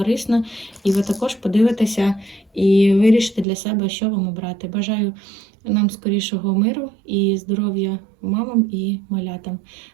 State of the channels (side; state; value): left; drops out; at 3.5 s